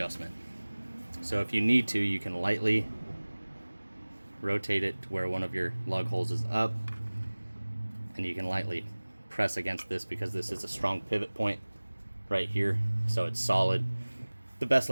So if you need to, you can lightly rotate it to where one of your lug holes is up, and you can lightly press against this because this is a strong pivot point right here, so it's solid. The best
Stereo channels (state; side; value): inverted; both; correlation -1.00